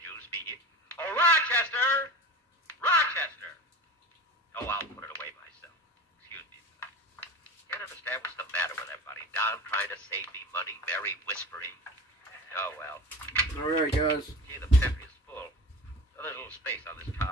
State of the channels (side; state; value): both; normal; correlation 0.33